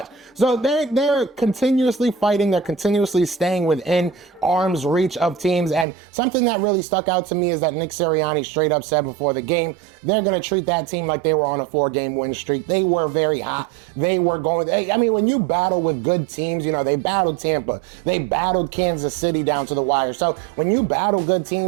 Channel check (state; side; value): drops out; left; at 5.9 s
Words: So they're continuously fighting. They're continuously staying within arm's reach of teams. And something that really stuck out to me is that Nick Sirianni straight up said before the game, they're going to treat that team like they were on a 4-game win streak. They were very hot. They were going, I mean, when you battle with good teams, they battled Tampa. They battled Kansas City down to the wire. So when you battle good